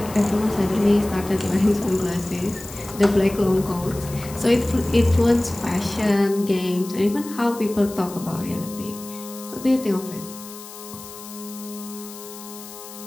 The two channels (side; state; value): left; noise; hiss, 15 dB below the sound